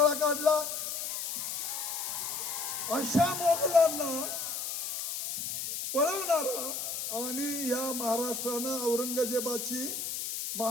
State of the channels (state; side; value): noise; left; hiss, 4 dB below the sound